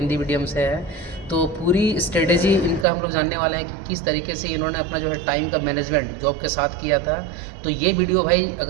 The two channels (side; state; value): left; drops out; at 2.9 s